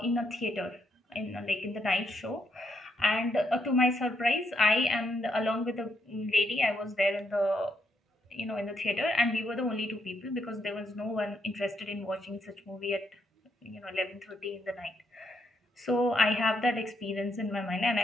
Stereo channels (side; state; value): both; normal; correlation 0.76